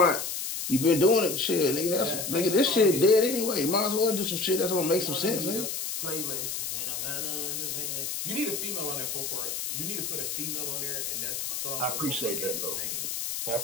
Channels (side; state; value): left; noise; hiss, 4 dB below the sound